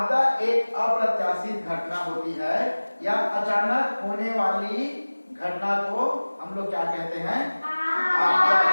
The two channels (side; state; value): both; inverted; correlation -1.00